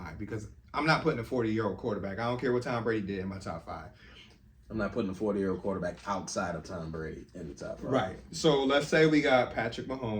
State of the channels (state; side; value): identical; both; correlation 1.00